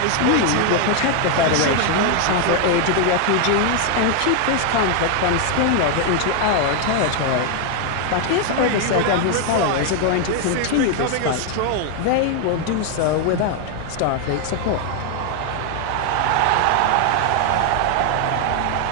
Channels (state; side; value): different; both; correlation 0.01